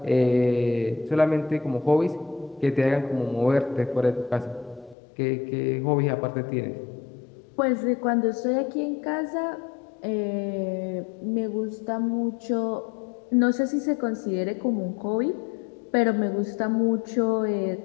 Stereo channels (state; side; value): drops out; right; at 5.0 s